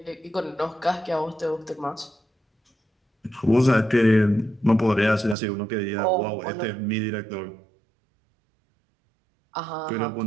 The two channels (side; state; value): left; drops out; at 5.4 s